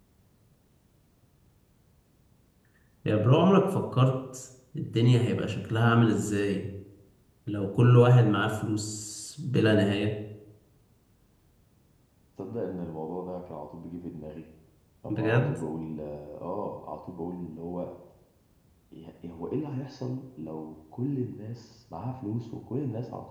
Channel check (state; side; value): identical; both; correlation 1.00